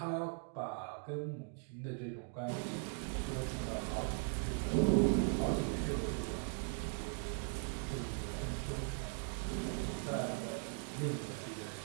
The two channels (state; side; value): silent; left; 51 dB below the other